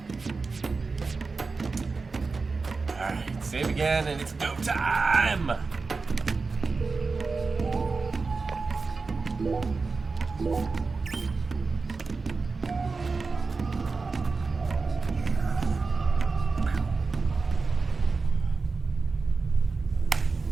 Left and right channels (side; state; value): left; quieter; 4.2 dB